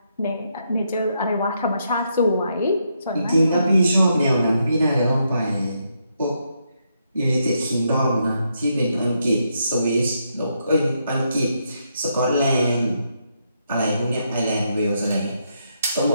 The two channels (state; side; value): inverted; both; correlation -0.79